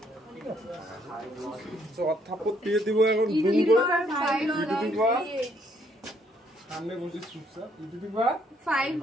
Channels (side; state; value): both; normal; correlation 0.68